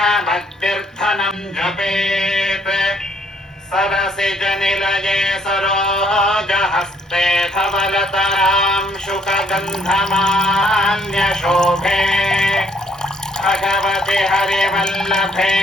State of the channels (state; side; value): normal; both; correlation 0.66